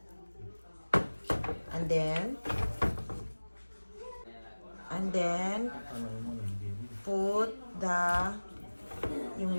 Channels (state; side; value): inverted; both; correlation -1.00